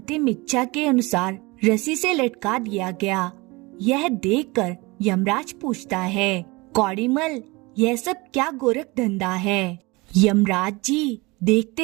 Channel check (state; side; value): quieter; left; 24.2 dB